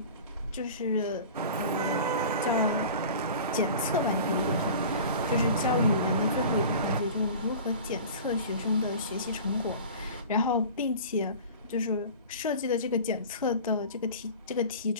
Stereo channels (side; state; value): both; inverted; correlation -0.38